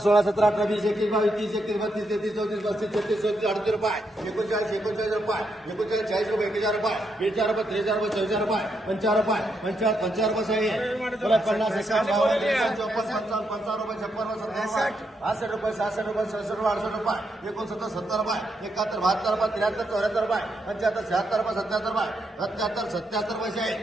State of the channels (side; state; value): both; normal; correlation 0.80